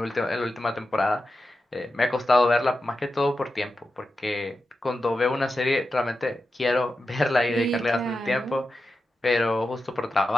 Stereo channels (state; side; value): normal; both; correlation 0.91